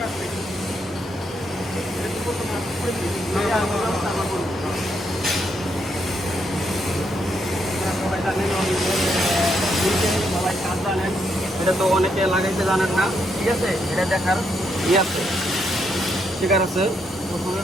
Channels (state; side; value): normal; both; correlation 0.77